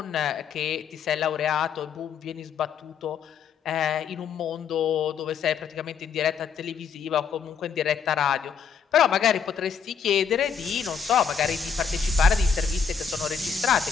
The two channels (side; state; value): right; quieter; 6.7 dB